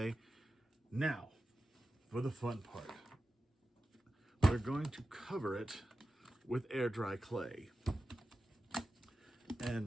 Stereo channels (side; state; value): both; normal; correlation 0.93